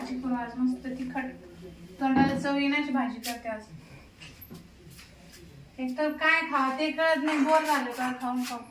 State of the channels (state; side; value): identical; both; correlation 1.00